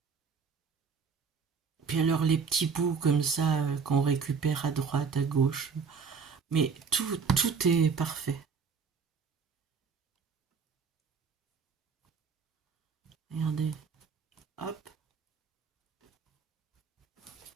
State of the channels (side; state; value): left; quieter; 5.6 dB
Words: Puis alors les petits bouts comme ça qu'on récupère à droite, à gauche. Mais tout est parfait. Regardez. Hop.